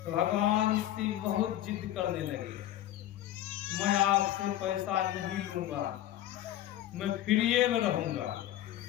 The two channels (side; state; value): right; quieter; 13.1 dB